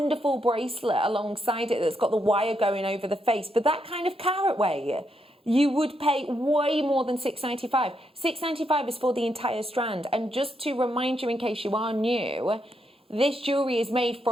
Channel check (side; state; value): both; normal; correlation 0.79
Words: bracelet alongside it that's got the wire going over the face. But that kind of carat weight, you would pay way more than $6.95. $6.95 is for the entire strand. And just to remind you, in case you are new, this jewellery is made